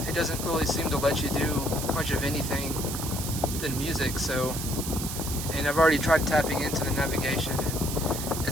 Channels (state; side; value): noise; right; hiss, 6 dB below the sound